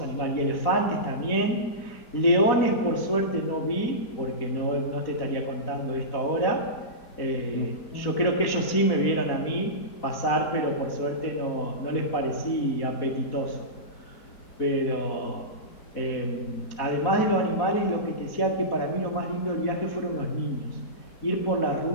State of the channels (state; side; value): late; right; 4.1 ms